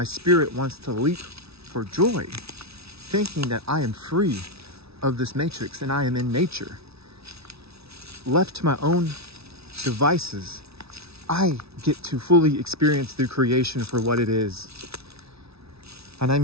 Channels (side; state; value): left; late; 0.78 ms